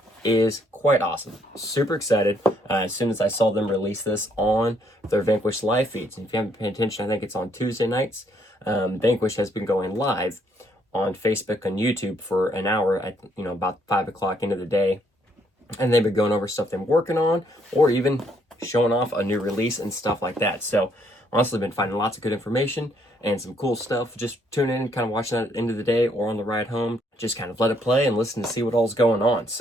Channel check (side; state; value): both; normal; correlation 0.70